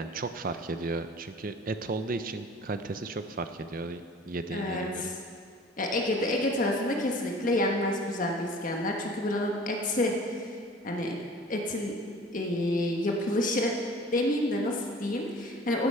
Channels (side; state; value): both; normal; correlation 0.46